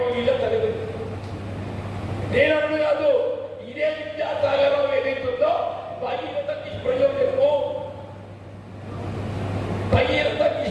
వీళ్ళ తల్లిదండ్రులు నేను అన్ను కాదు. ఇదే విద్యాసాగరం ఏదైతుందో భగీరథ నిష్ప్రయోజనము భగీరథ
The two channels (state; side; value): identical; both; correlation 1.00